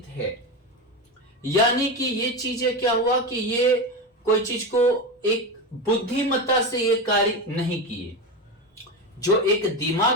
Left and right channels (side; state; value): both; normal; correlation 0.18